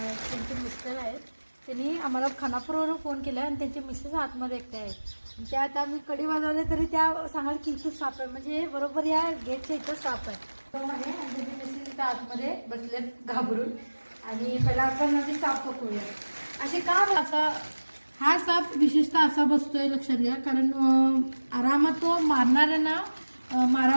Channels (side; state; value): both; inverted; correlation -1.00